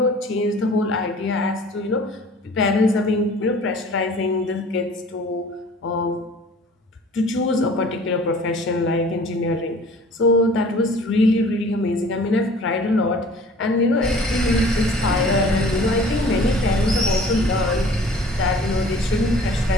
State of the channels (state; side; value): normal; both; correlation 0.49